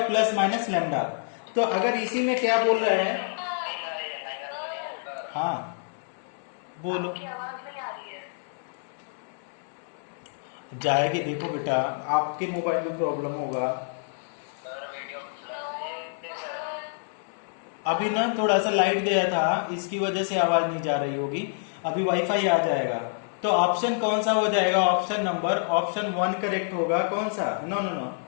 प्लस माइनस लेमडा। तो अगर इसी में क्या बोल रहा है, हाँ बोलो, जाएगी, देखो बेटा आपके मोबाइल में प्रॉब्लम होगा। अभी ना थोड़ा सा लाइट गया था, इसकी वजह से आवाज नहीं जा रही होगी, अभी वाईफाई आ जाएगा। तो ऑप्शन कौन सा हो जाएगा, ऑप्शन नंबर, ऑप्शन 1 करेक्ट होगा, कौन सा, no no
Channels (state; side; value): silent; right; 60 dB below the other